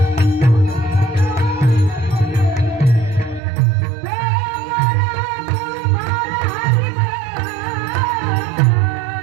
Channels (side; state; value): left; drops out; at 3.4 s